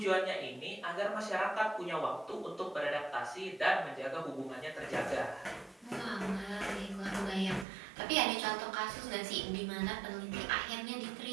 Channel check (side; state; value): left; drops out; at 7.7 s